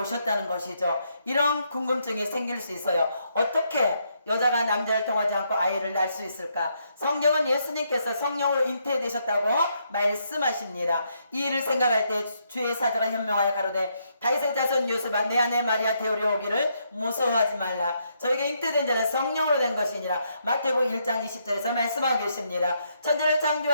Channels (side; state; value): both; inverted; correlation -0.76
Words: 것이죠. 이런 궁금증이 생길 수 있어요. 어떻게 여자가 남자를 통하지 않고 아이를 낳을 수 있을까? 성경은 예수님께서 성령으로 잉태되셨다고 말씀하십니다. 이 일을 생각할 때 주의 사자가 현명하여 가로되 다윗의 자손 요셉아 내 아내 마리아 데려오기를 오기를 무서워하지 말라. 저에게 잉태된 자는 성령으로 된 것이니라. 마태복음 1장 20절에서 말씀하고 계십니다. 천지를